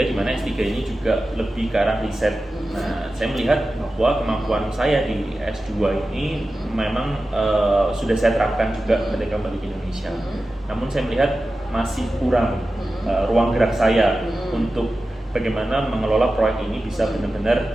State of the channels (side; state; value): both; normal; correlation 0.94